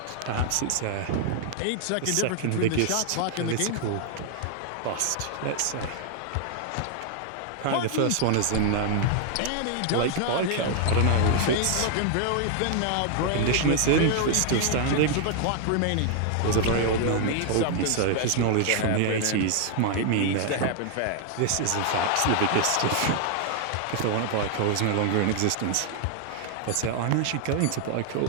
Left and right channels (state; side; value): different; both; correlation 0.00